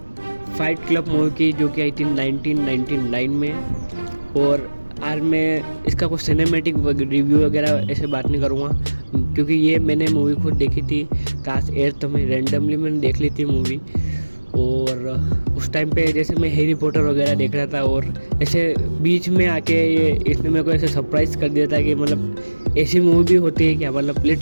फाइट क्लब मूवी की, जो कि आई थी 1999 में। और आज मैं इसका कुछ सिनेमैटिक रिव्यू वगैरह ऐसे बात नहीं करूँगा, क्योंकि ये मैंने मूवी खुद देखी थी क्लास 8th में। रैंडमली मैंने देख ली थी मूवी। और उस टाइम पे जैसे मैं हैरी पॉटर वगैरह देख रहा था, और ऐसे बीच में आके ये इसने मेरे को ऐसे सरप्राइज़ कर दिया था कि मतलब ऐसी मूवी भी होती है क्या। मतलब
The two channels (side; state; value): both; inverted; correlation -1.00